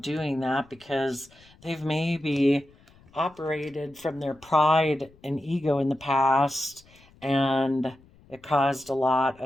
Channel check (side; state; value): left; noise; rumble, 28 dB below the sound